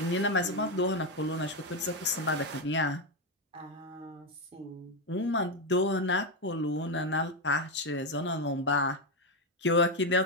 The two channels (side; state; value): both; normal; correlation 0.07